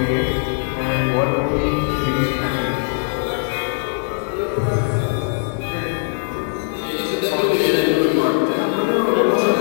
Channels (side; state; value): right; silent; digital silence